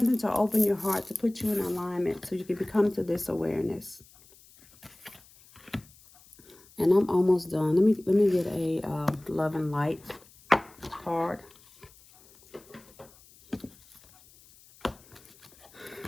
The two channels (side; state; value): left; noise; hiss, 26 dB below the sound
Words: to open your heart, to put you in alignment so you can become to this awareness. And I'm almost done. Let me get a love and light card.